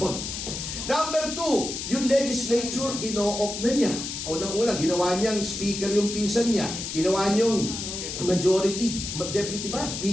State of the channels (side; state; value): left; noise; hiss, 6 dB below the sound